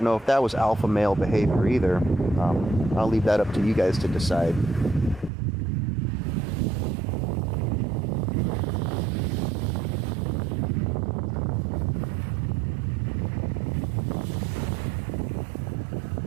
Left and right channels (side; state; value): left; drops out; at 5.3 s